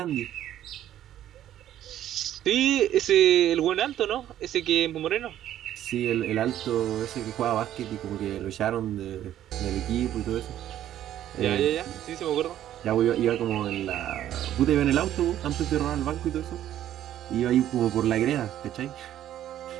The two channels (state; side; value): quieter; left; 11.9 dB